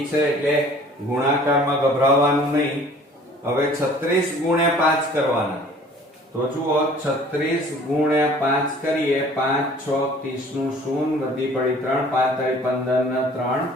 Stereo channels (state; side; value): normal; both; correlation 0.51